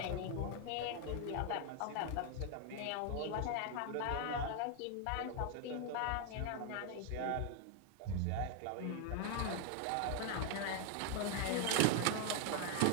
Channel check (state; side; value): different; both; correlation 0.00